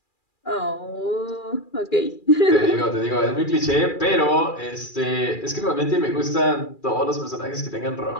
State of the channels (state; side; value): late; right; 2.4 ms